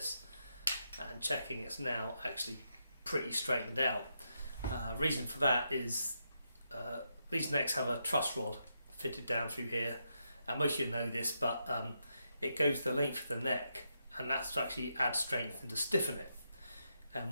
and checking it's now actually pretty straightened out. Reason for that is these necks have a truss rod fitted down through here, and most of you know this, but it goes the length of the neck, and that's to actually add strength and to stiffen it.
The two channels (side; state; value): both; inverted; correlation -0.82